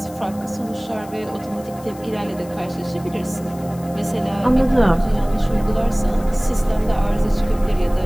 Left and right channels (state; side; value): noise; left; hiss, 22 dB below the sound